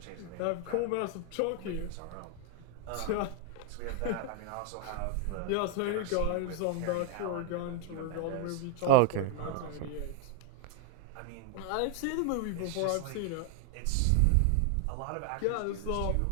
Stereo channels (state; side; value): different; both; correlation 0.00